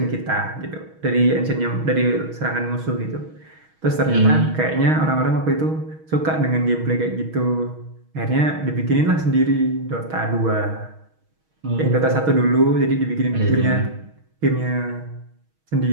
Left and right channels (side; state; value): left; late; 6.3 ms